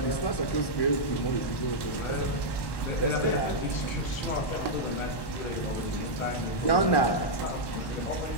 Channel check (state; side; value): late; right; 1.1 ms